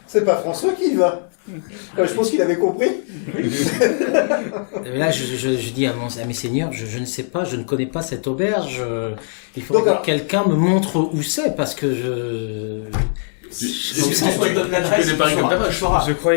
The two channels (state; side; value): silent; right; 63 dB below the other